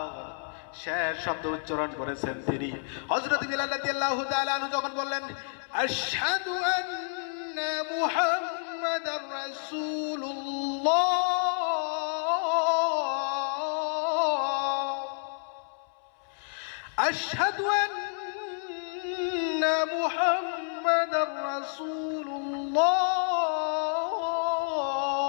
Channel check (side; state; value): right; silent; 58 dB below the other